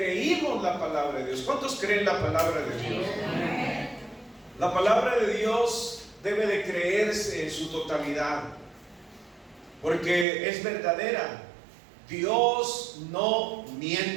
la palabra de Dios. ¿Cuántos creen la palabra de Dios? La palabra de Dios debe de creerse en su totalidad, porque es verdadera. Dios no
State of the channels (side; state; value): left; drops out; at 10.2 s